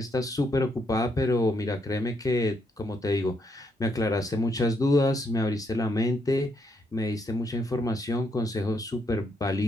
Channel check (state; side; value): normal; both; correlation 0.76